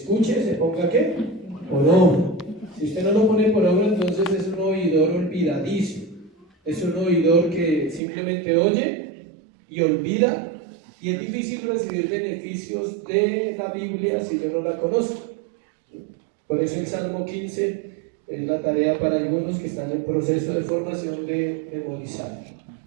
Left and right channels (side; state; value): left; drops out; at 8.0 s